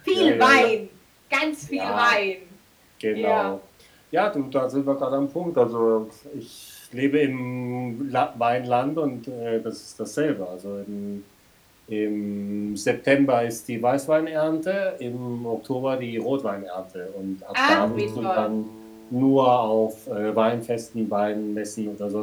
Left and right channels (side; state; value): both; identical; correlation 1.00